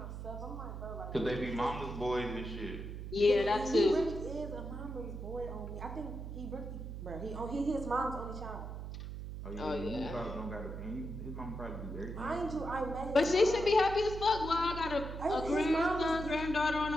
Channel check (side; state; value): right; noise; hum, 7 dB below the sound